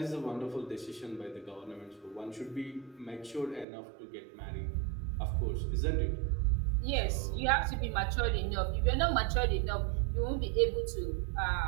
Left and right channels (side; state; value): left; drops out; at 3.7 s